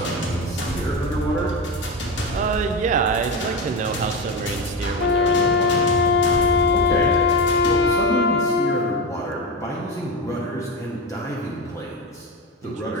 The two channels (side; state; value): both; normal; correlation 0.17